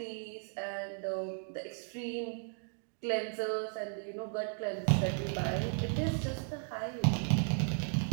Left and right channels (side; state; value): left; silent; 54 dB below the other